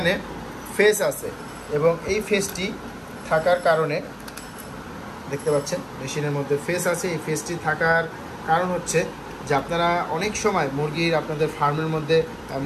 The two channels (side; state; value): both; identical; correlation 1.00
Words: ফেস আছে এবং এই ফেসটি থাকার কারণে দেখতে পাচ্ছেন মেশিনের মধ্যে ফেস আছে। এই ফেসটি থাকার কারণ হচ্ছে যে আপনারা অনেক সময় আপনাদের ফার্মের মধ্যে